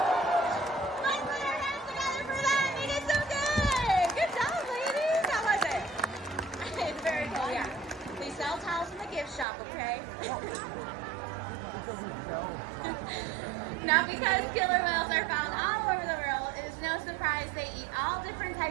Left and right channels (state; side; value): drops out; left; at 9.5 s